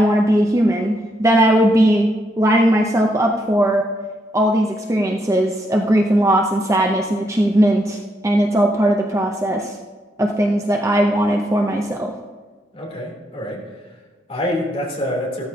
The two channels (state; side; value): normal; both; correlation 0.77